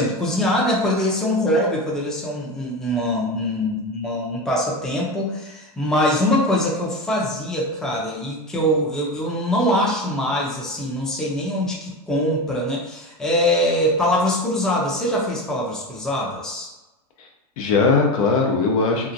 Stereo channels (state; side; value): normal; both; correlation 0.23